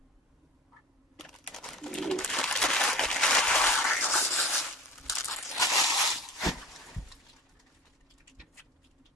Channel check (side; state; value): both; normal; correlation 0.39